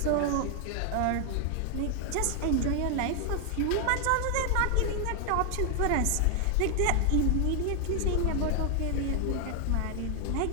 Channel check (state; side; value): different; both; correlation 0.00